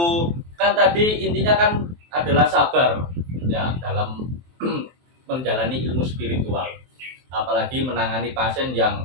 Kan tadi intinya kan adalah sabar ya dalam menjalani ilmu spiritual. Apalagi menangani pasien yang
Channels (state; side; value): late; left; 23 ms